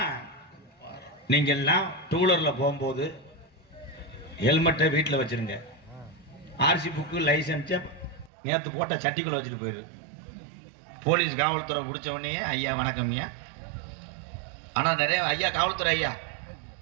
நீங்க எல்லாம் டூலர்ல போகும்போது ஹெல்மெட்டை வீட்டில் வச்சிருங்க. ஆர்சி புக்கு லைசன்ஸை நேற்று போட்ட சட்டிக்குள்ள வச்சுட்டு போயிரு. போலீஸ் காவல்துறை பிடிச்ச உடனே ஐயா வணக்கம் ஐயா. ஆனால் நிறைய ஐயா காவல்துறை ஐயா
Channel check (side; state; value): left; drops out; at 8.3 s